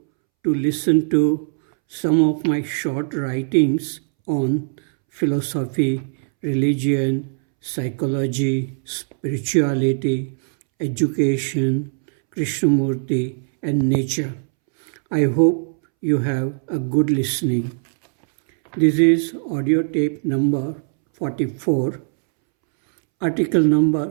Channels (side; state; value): left; silent; 65 dB below the other